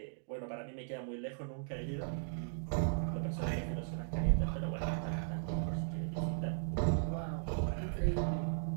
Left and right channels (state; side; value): silent; left; digital silence